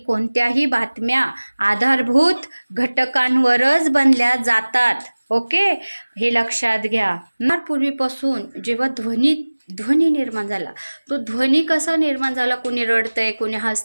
कोणत्याही बातम्या आधारभूत घटकांवरच बनल्या जातात. ओके, हे लक्षात घ्या. पूर्वीपासून जेव्हा ध्वनी निर्माण झाला, तो ध्वनी कसा निर्माण झाला? कोणी रडतंय, कोणी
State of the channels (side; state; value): both; inverted; correlation -1.00